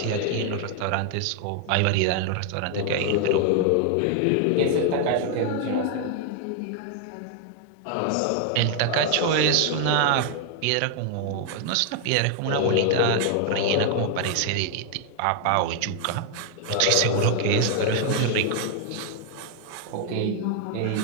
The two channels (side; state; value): both; different; correlation 0.00